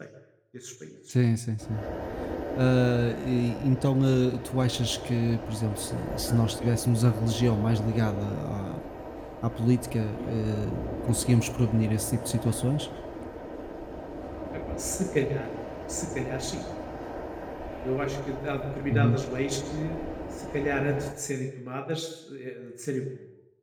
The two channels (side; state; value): both; identical; correlation 1.00